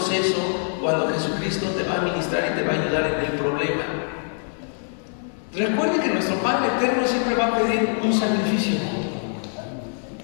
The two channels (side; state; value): right; silent; 63 dB below the other